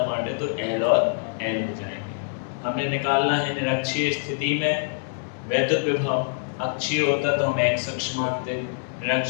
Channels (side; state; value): right; silent; digital silence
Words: बांटे तो एल और एल हो जाएंगे। हमने निकालना है निरक्षीय स्थिति में वैद्युत विभव, अक्षीय होता तो हम एक्स अक्ष मानते,